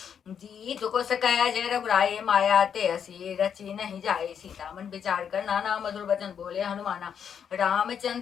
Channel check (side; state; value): right; quieter; 7.8 dB